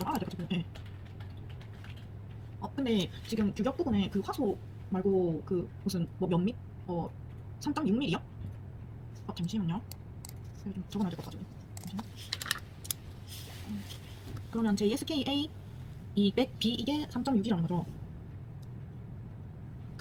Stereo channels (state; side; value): identical; both; correlation 1.00